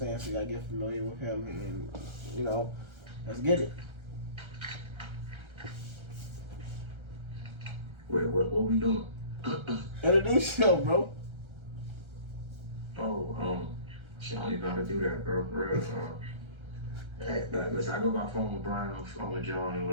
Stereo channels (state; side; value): late; left; 1.3 ms